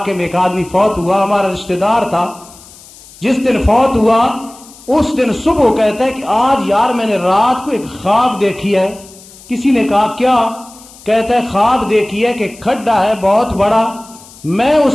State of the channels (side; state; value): left; noise; hiss, 22 dB below the sound